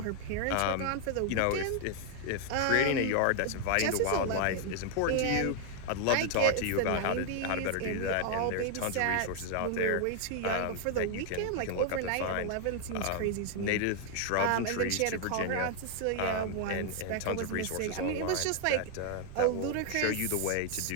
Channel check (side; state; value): both; different; correlation 0.00